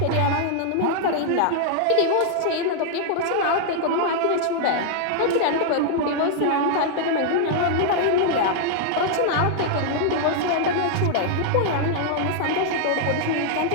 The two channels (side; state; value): both; different; correlation -0.01